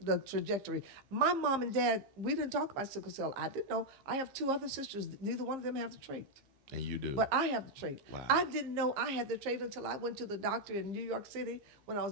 trajectory. My mom and dad, we didn't talk about sickle cell. I didn't know. I have 2 other sisters. Neither one of them have the trait. And you do. But I have the trait. Wow. I didn't know I had the trait until I went to the doctor in New York City when I was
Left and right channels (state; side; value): late; left; 15 ms